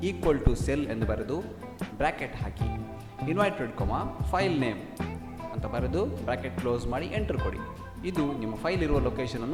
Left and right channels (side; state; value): both; identical; correlation 1.00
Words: ಈಕ್ವಲ್ ಟು ಸೆಲ್ ಎಂದು ಬರೆದು ಬ್ರ್ಯಾಕೆಟ್ ಹಾಕಿ, ಇನ್ವರ್ಟೆಡ್ ಕಾಮಾ ಫೈಲ್ ನೇಮ್ ಅಂತ ಬರೆದು ಬ್ರ್ಯಾಕೆಟ್ ಕ್ಲೋಸ್ ಮಾಡಿ ಎಂಟರ್ ಕೊಡಿ. ಇದು ನಿಮ್ಮ ಫೈಲ್ ಇರುವ